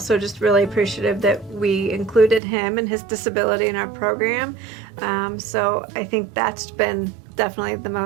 just really appreciative that we included him and his disability in our program. So I think that's been definitely the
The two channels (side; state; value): left; drops out; at 2.4 s